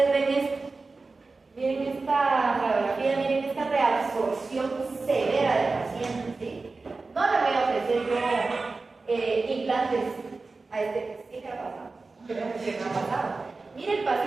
ven esto. Miren esta radiografía, miren esta reabsorción severa del paciente. ¿Sí? No le voy a ofrecer yo implantes a este. ¿Qué ha pasado? ¿Qué me ha pasado? Mire, el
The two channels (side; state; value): left; quieter; 3.8 dB